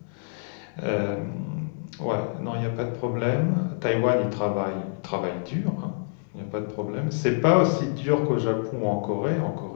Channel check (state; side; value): silent; right; digital silence